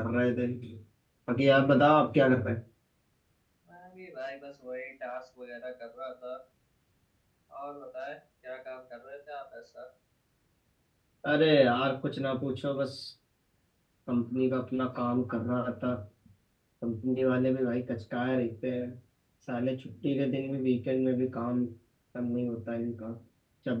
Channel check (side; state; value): both; identical; correlation 1.00